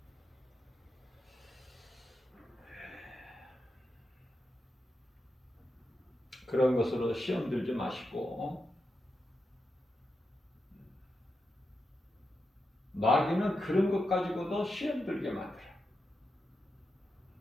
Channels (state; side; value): normal; both; correlation 0.87